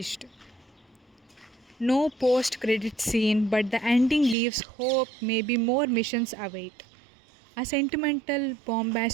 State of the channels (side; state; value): left; drops out; at 4.4 s